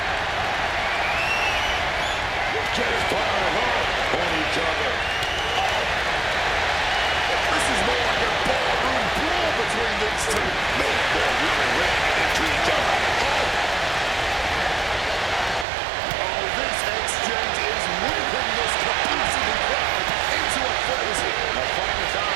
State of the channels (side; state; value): left; drops out; at 15.7 s